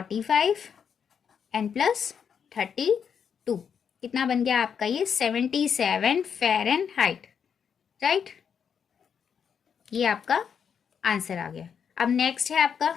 एंड प्लस 32, कितना बन गया आपका ये 77 फ़ारेनहाइट, राइट। ये आपका आंसर आ गया। अब नेक्स्ट है आपका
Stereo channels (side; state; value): right; quieter; 7.3 dB